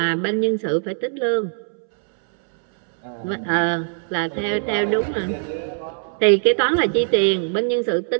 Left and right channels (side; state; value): left; silent; 65 dB below the other